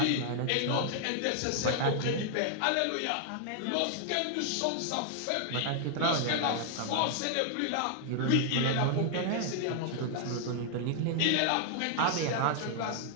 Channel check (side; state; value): both; different; correlation 0.00